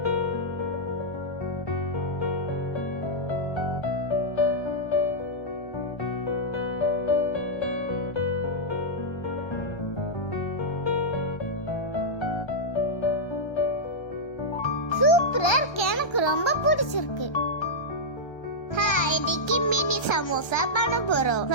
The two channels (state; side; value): late; right; 1.3 ms